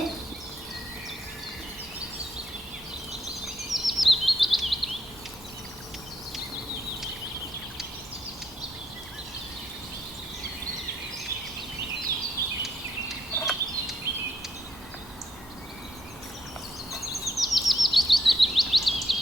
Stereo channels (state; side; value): normal; both; correlation 0.74